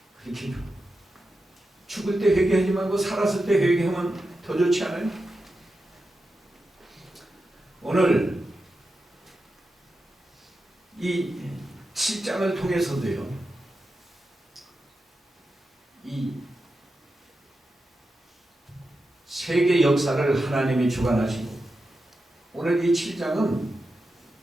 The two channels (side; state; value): both; normal; correlation 0.90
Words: 그렇게 죽을 때 회개하지 말고 살았을 때 회개하면 더 좋지 않아요? 오늘 이 7장을 통해서도요. 이 세계 역사를 하나님이 주관하시고 오늘 이 7장은